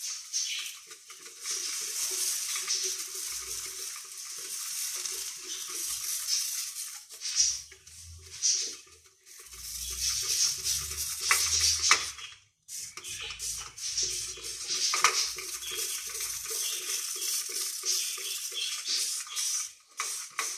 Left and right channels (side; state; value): both; identical; correlation 1.00